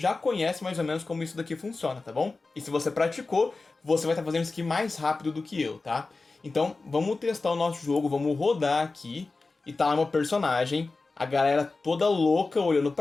conhece mais ou menos como isso daqui funciona, tá bom? E se você praticou, você vai estar fazendo isso aqui mais rápido do que eu, tá? Então vamos testar o nosso jogo, vamos rodar aqui. E tá lá meu personagem, a galera toda louca olhando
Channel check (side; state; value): right; quieter; 3.7 dB